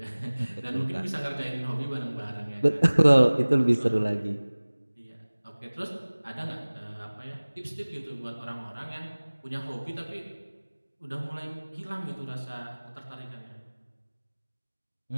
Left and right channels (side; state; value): both; inverted; correlation -1.00